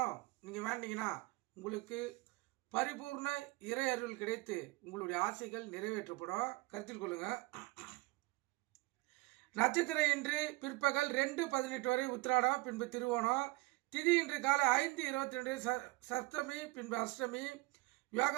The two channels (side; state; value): left; quieter; 22.0 dB